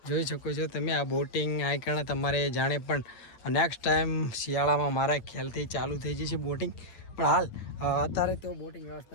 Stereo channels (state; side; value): late; right; 8.8 ms